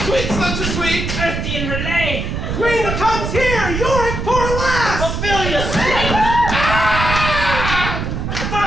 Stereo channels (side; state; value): right; noise; rumble, 3 dB below the sound